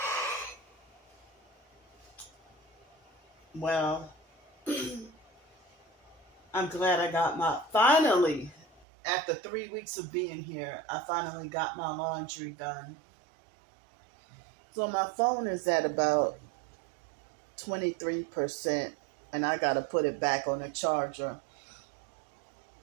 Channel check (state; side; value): drops out; left; at 8.8 s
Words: Well, I'm glad I got finally, after 3 weeks of being here, I finally got my laundry done. So my phone is at about 23%, and I got to put it back on the charger.